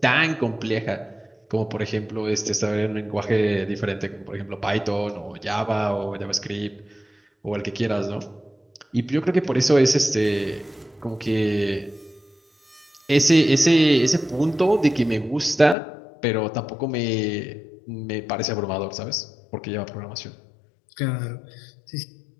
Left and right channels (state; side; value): drops out; right; at 15.8 s